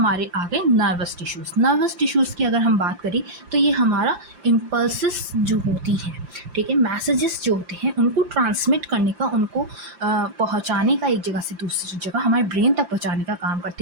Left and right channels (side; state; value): left; late; 5.8 ms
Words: आ गए नर्वस टिश्यूज़। नर्वस टिश्यूज़ की अगर हम बात करें तो ये हमारा इम्पल्सिस जो होती हैं, ठीक है, मैसेजेस जो होते हैं उनको ट्रांसमिट करने का, उनको पहुंचाने का एक जगह से दूसरी जगह हमारे ब्रेन तक पहुंचाने का काम